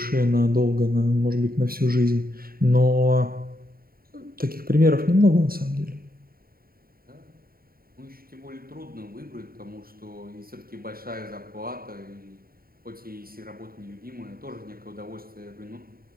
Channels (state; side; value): late; left; 0.43 ms